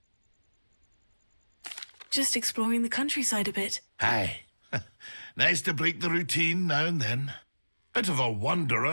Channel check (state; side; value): inverted; both; correlation -1.00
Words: Just exploring the countryside a bit. Aye. Nice to break the routine now and then. Bit of a